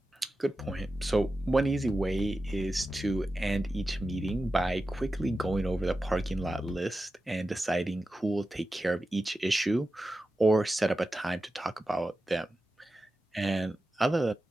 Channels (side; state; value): both; normal; correlation 0.93